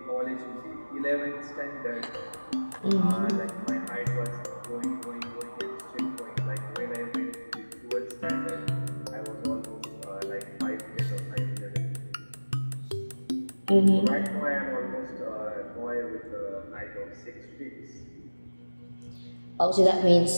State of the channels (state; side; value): inverted; both; correlation -1.00